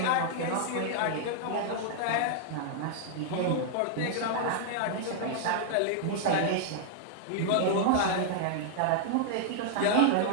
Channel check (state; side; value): different; both; correlation -0.01